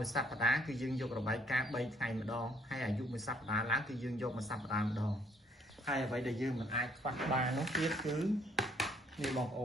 ួយសប្តាហ៍គឺយើងយករបាយការណ៍3ថ្ងៃម្ដងហើយអាយុមួយសប្តាហ៍ឡើងគឺយើងយកមួយសប្តាហ៍ម្ដងហើយអ្វីដែលយើងមិនអាចខ្វះបាននោះទៀតគឺនេះបងប្អ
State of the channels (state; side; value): normal; both; correlation 0.65